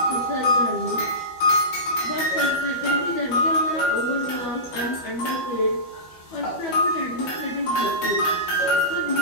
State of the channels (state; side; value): late; right; 12 ms